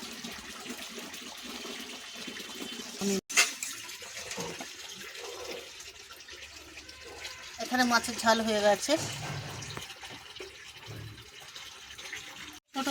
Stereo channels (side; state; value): both; identical; correlation 1.00